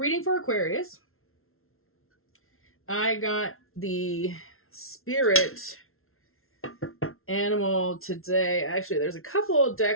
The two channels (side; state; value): right; late; 0.62 ms